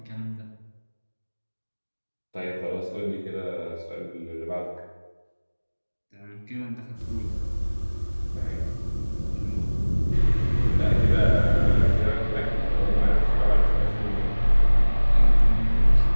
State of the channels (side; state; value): both; inverted; correlation -1.00